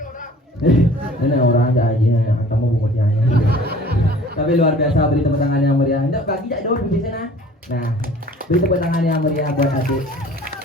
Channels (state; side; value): normal; both; correlation 0.49